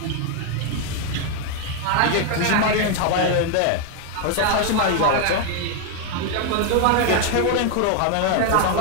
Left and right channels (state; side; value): different; both; correlation 0.00